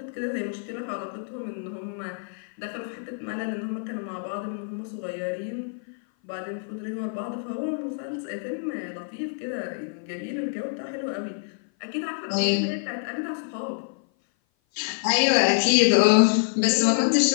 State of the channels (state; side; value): silent; right; 56 dB below the other